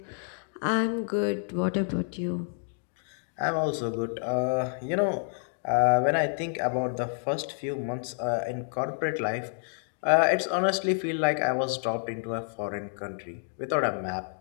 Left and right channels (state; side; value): silent; right; digital silence